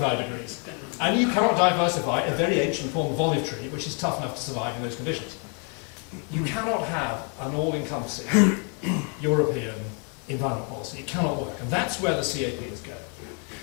degrees. And you cannot diversify a very ancient form of olive tree, which is tough enough to survive in those conditions. You cannot have an all-encompassing European environment policy. It cannot work. And that's where the CAP is going.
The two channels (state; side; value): quieter; right; 38.5 dB